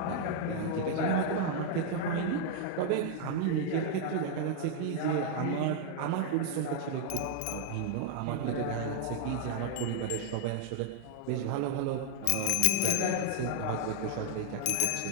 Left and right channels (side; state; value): both; different; correlation 0.00